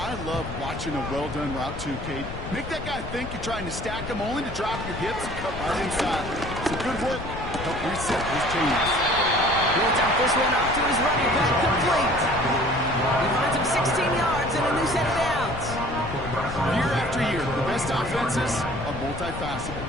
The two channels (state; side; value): noise; left; rumble, 9 dB below the sound